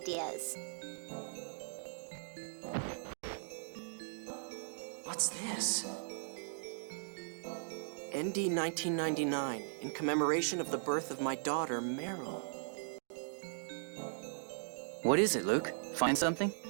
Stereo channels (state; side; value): silent; left; digital silence